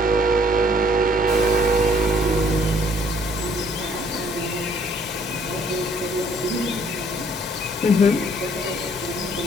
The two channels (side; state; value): both; normal; correlation 0.63